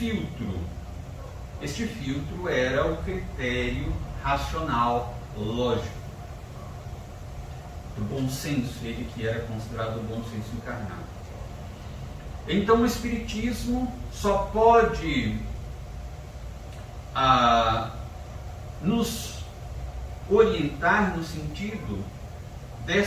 Este filtro era o critério racional, lógico, do bom senso, ele que era considerado o bom senso encarnado. Então o Espiritismo só pode nos orientar no sentido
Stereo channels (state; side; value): identical; both; correlation 1.00